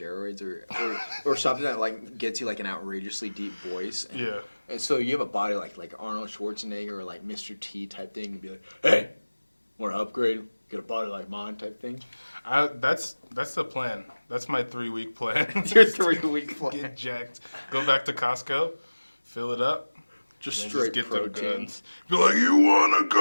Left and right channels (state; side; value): inverted; both; correlation -1.00